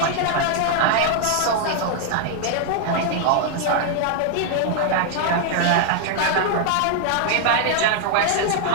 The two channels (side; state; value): both; different; correlation 0.00